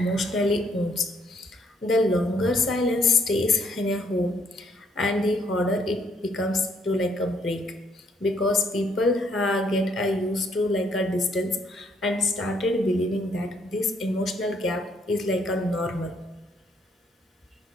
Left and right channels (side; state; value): both; normal; correlation 0.69